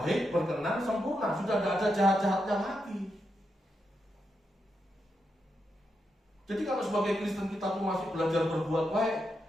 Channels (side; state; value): both; normal; correlation 0.84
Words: berkenan, sempurna, sudah tidak ada jahat-jahatnya lagi. Jadi kalau sebagai Kristen kita tuh masih belajar berbuat baik,